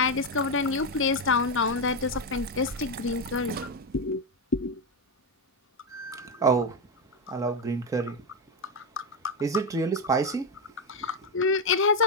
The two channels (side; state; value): both; normal; correlation 0.08